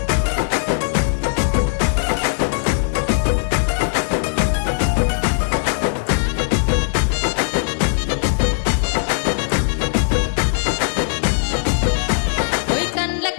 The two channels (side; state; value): right; silent; digital silence